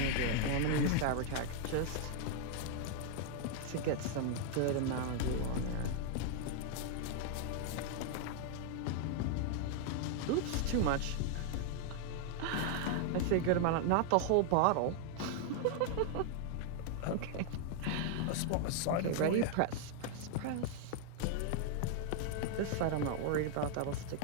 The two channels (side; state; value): both; different; correlation 0.00